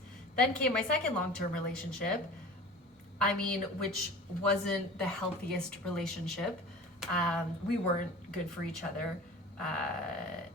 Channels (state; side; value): normal; both; correlation 0.39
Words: Then came my second long-term relationship, which wasn't the healthiest relationship. We weren't good for each other.